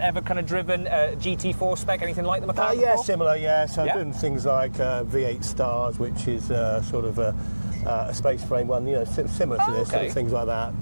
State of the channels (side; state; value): both; inverted; correlation -1.00